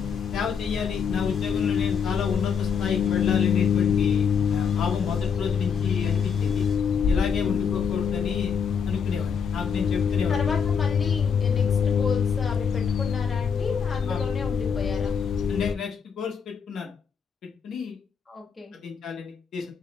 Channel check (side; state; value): right; quieter; 6.6 dB